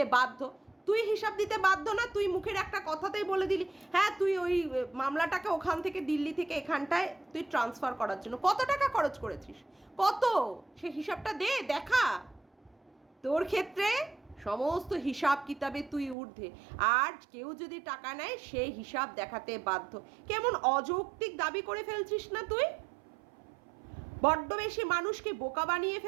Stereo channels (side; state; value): left; drops out; at 16.2 s